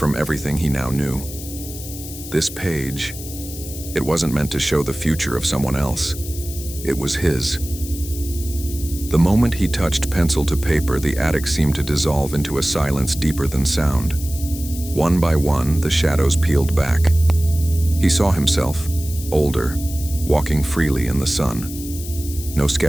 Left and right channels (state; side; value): noise; left; hiss, 12 dB below the sound